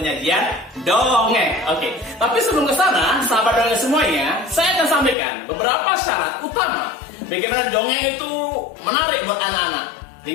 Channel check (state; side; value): drops out; right; at 5.2 s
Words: dongeng. Oke, tapi sebelum ke sana, sahabat dongeng semuanya, saya akan sampaikan beberapa syarat utama bagaimana dongeng itu menarik buat anak-anak.